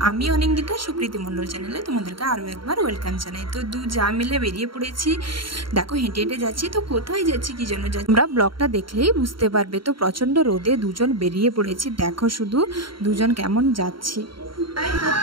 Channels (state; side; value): late; left; 0.73 ms